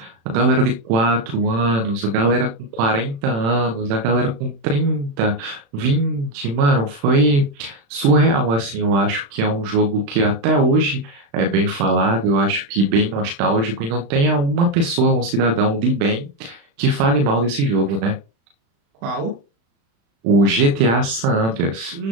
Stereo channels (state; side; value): late; left; 36 ms